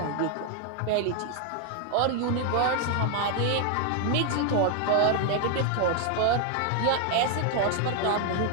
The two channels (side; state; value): both; different; correlation 0.00